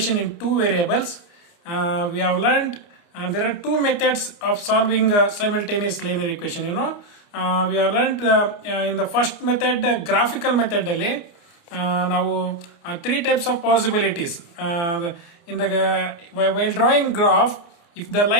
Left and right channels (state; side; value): late; right; 29 ms